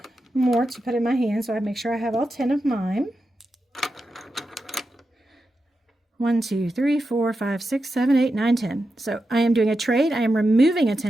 more to put in my hand so I make sure I have all 10 of mine. 1, 2, 3, 4, 5, 6, 7, 8, 9, 10. So I am doing a trade. I am removing a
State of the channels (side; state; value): both; normal; correlation 0.89